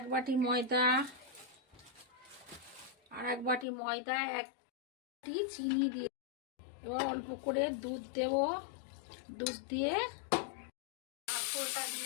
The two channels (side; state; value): right; drops out; at 3.7 s